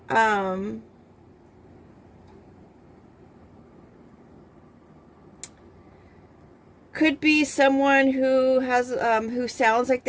Could be someone who has who sounds like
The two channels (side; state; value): both; identical; correlation 1.00